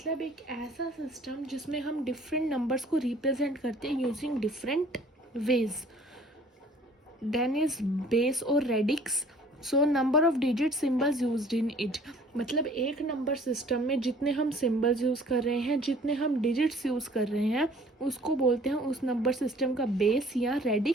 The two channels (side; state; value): both; normal; correlation 0.53